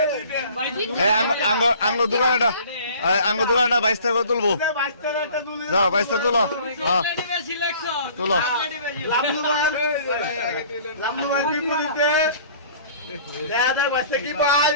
আঙ্গ দোকানটা বাইশ টাকা তুলবো। যাও 22 টাকা তুলো। তুলো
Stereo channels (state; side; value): inverted; both; correlation -0.50